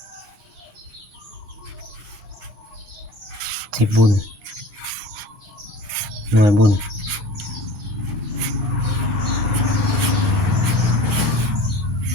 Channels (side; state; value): left; late; 8.6 ms